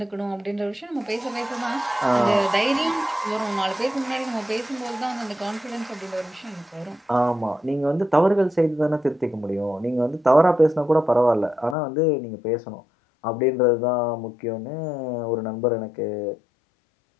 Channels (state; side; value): drops out; right; at 11.8 s